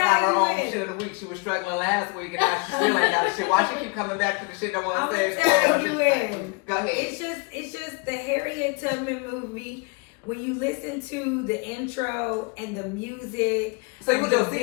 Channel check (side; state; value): right; quieter; 30.8 dB